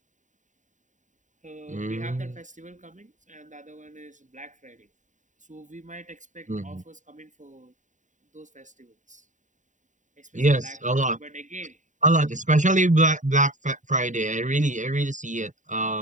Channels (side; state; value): left; late; 0.36 ms